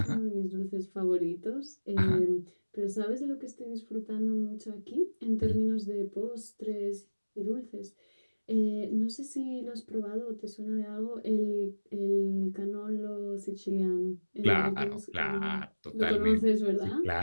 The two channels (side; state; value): both; inverted; correlation -1.00